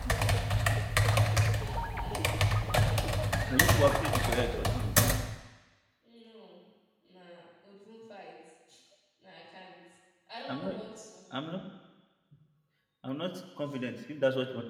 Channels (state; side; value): identical; both; correlation 1.00